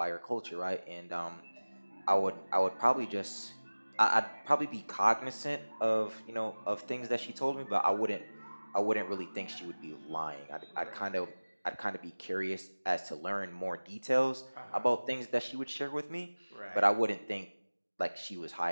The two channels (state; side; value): inverted; both; correlation -1.00